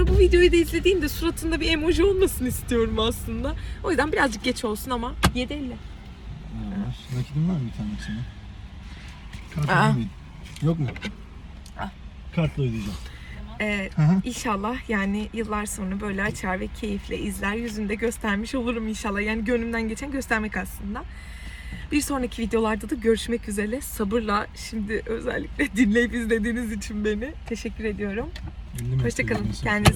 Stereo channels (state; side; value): identical; both; correlation 1.00